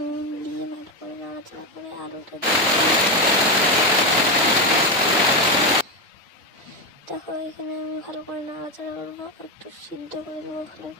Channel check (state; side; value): normal; both; correlation 0.10